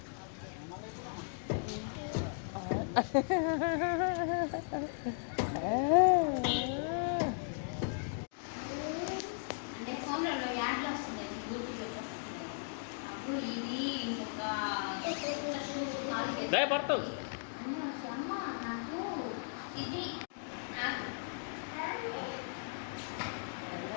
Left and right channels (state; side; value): silent; right; digital silence